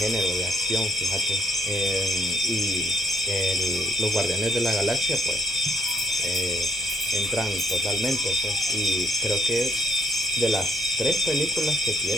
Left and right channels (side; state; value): both; normal; correlation 0.70